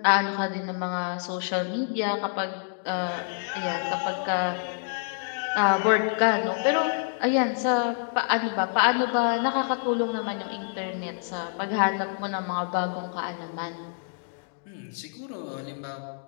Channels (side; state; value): right; silent; digital silence